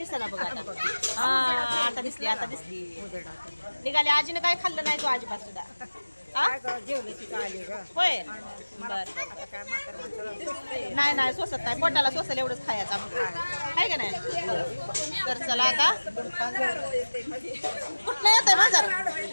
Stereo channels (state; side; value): inverted; both; correlation -1.00